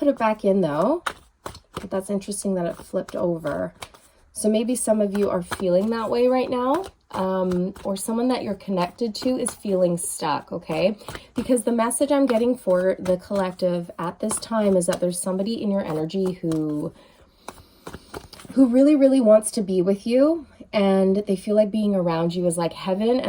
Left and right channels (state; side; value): identical; both; correlation 1.00